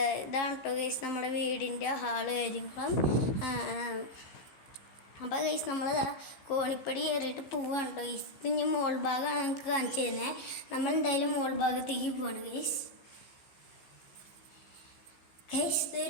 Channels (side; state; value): right; late; 16 ms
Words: ഇതാണ് കേട്ടോ ഗൈസ് നമ്മുടെ വീടിൻ്റെ ഹാള് കാര്യങ്ങളും. അപ്പോൾ ഗൈസ് നമ്മൾ കോണിപ്പടി കയറിയിട്ട് പോവാണ് കേട്ടോ ഗൈസ്. ഇനി മോൾ ഭാഗമാണ് നമുക്ക് കാണിച്ചു തരുന്നത്. നമ്മൾ എന്തായാലും മോൾ ഭാഗത്തേക്ക് പോവാണ് ഗൈസ്. ഗൈസ്